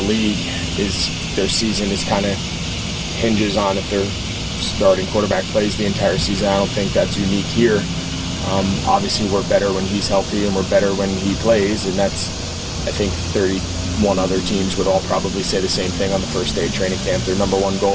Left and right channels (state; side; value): identical; both; correlation 1.00